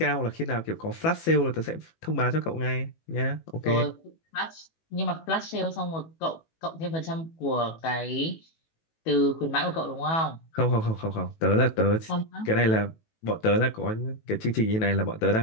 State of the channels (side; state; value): right; late; 18 ms